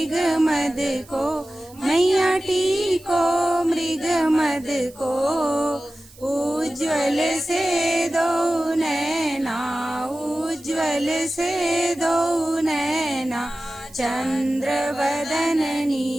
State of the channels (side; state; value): right; noise; hiss, 24 dB below the sound